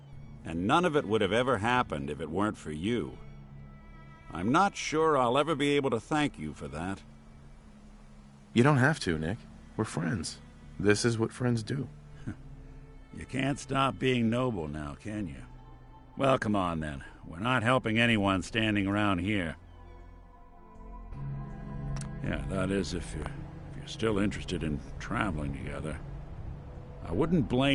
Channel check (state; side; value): identical; both; correlation 1.00